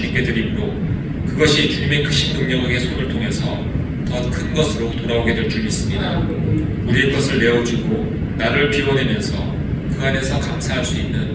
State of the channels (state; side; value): identical; both; correlation 1.00